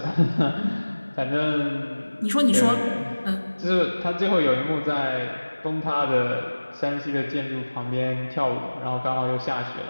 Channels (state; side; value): inverted; both; correlation -1.00